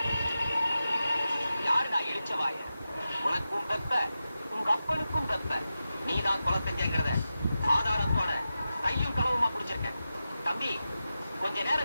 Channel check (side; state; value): both; inverted; correlation -0.92